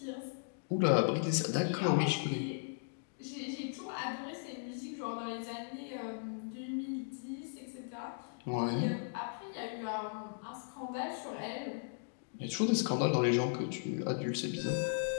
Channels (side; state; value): right; silent; digital silence